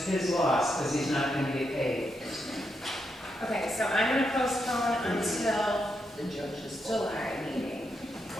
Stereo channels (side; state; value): both; normal; correlation 0.82